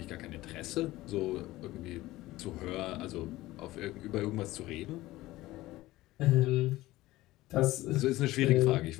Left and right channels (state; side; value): quieter; right; 17.5 dB